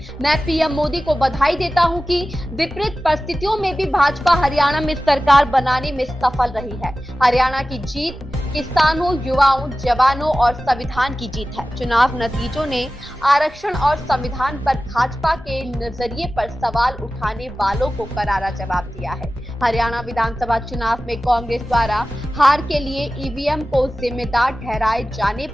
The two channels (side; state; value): both; normal; correlation 0.95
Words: मैं पीएम मोदी को बधाई देता हूं कि विपरीत परिस्थितियों में भी भाजपा हरियाणा में सरकार बनाने में सफल रही है। हरियाणा की जीत किसानों, युवाओं, जवानों और संविधान की जीत है। चुनाव नतीजों ने आरक्षण और संविधान पर भाजपा के नजरिए पर सवाल उठाने वालों को करारा जवाब दिया है। हरियाणा विधानसभा चुनाव में कांग्रेस द्वारा हार के लिए ईवीएम को जिम्मेदार ठहराए जाने